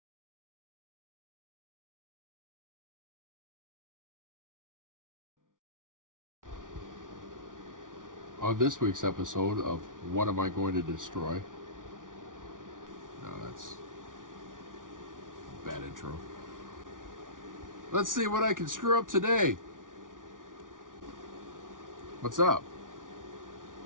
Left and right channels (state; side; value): late; left; 0.88 ms